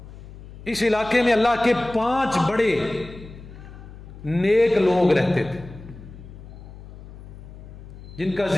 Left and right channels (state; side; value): noise; left; hum, 16 dB below the sound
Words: اس علاقے میں اللہ کے 5 بڑے نیک لوگ رہتے تھے جن کا